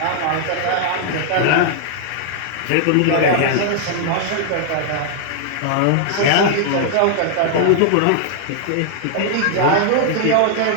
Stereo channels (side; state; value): both; different; correlation 0.00